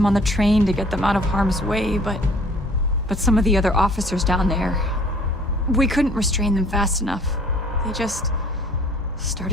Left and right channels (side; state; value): both; normal; correlation 0.54